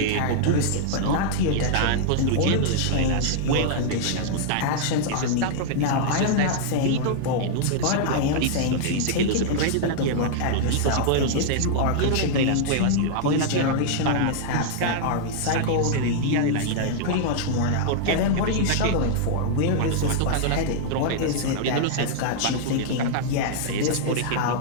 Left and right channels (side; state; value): both; different; correlation -0.01